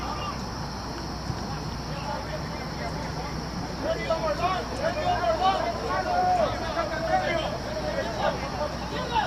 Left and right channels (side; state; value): both; identical; correlation 1.00